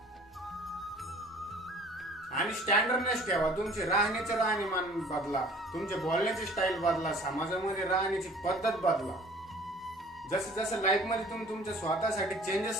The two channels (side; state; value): both; normal; correlation 0.51